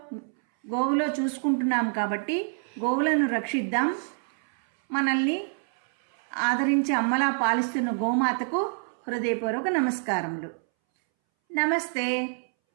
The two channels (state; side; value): silent; left; 60 dB below the other